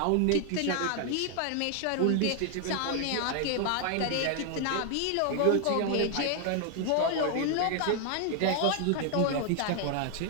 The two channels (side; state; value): both; different; correlation 0.00